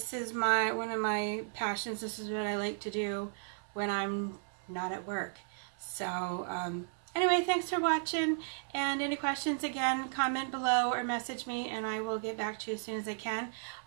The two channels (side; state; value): left; silent; 55 dB below the other